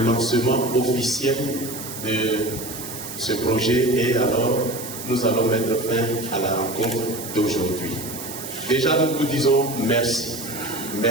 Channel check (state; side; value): noise; right; hiss, 10 dB below the sound